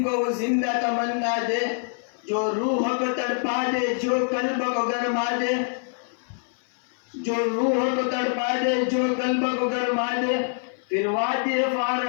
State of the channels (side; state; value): right; silent; 57 dB below the other